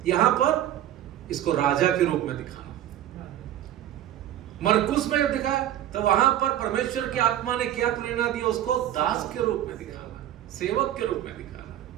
यहां पर इसको राजा के रूप में दिखाना। मरकुस में जब दिखा, तो वहां पर परमेश्वर की आत्मा ने क्या प्रेरणा दिया? उसको दास के रूप में दिखाना, सेवक के रूप में दिखाना।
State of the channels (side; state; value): left; quieter; 12.0 dB